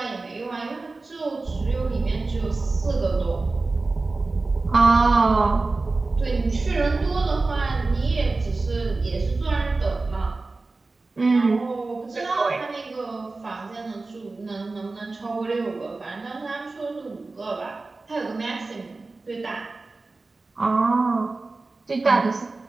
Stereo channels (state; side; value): quieter; left; 3.5 dB